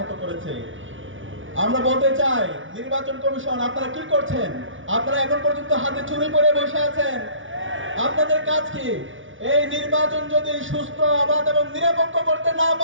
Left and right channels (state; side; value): late; left; 0.57 ms